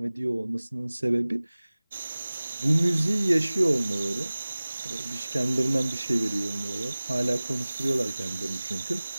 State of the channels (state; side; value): inverted; both; correlation -0.99